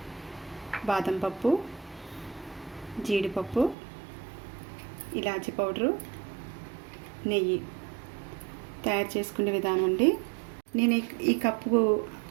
బాదం పప్పు, జీడిపప్పు, ఇలాచీ పౌడరు, నెయ్యి. తయారు చేసుకునే విధానం అండి. నేను ఈ కప్పు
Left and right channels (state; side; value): drops out; left; at 3.8 s